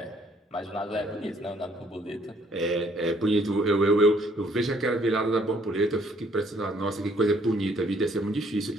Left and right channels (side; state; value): both; normal; correlation 0.64